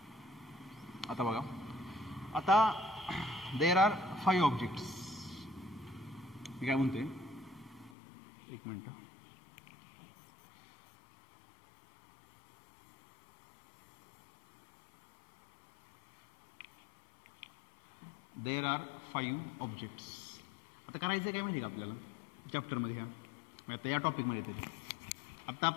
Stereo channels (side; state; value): right; drops out; at 8.0 s